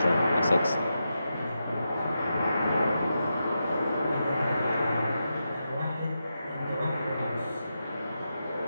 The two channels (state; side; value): inverted; both; correlation -0.87